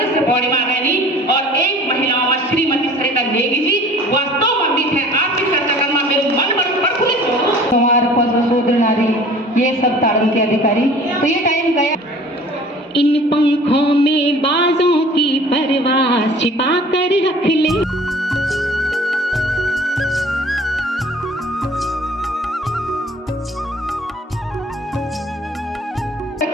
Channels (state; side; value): normal; both; correlation 0.48